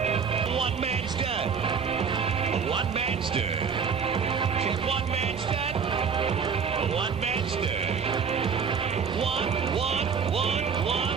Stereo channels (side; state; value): left; quieter; 6.3 dB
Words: One-man stud. One-man stud. Said one-man stud. One-man stud. One.